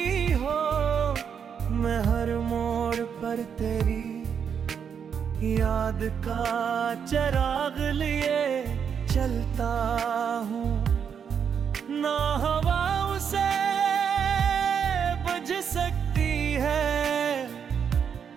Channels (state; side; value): quieter; left; 7.4 dB